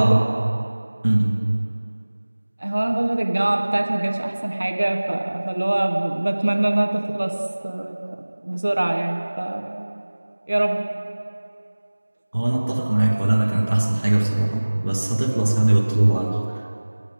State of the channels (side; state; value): both; inverted; correlation -1.00